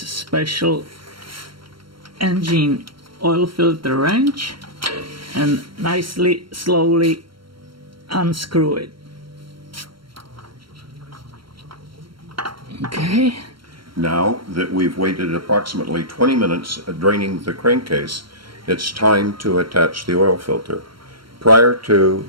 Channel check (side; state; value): left; late; 0.73 ms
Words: engine oil filter wrench and nicely, slowly unscrew it. Okay. Now that we've waited approximately 20 minutes draining the crankcase, it's time to attach the oil filter. Prior to